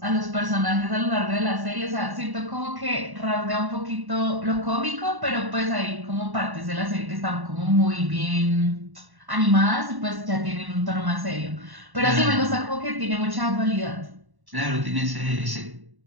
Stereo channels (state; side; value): late; left; 1.1 ms